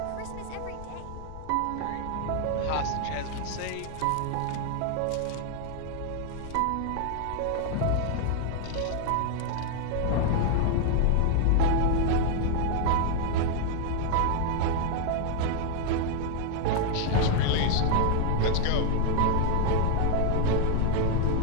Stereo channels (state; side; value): different; both; correlation 0.00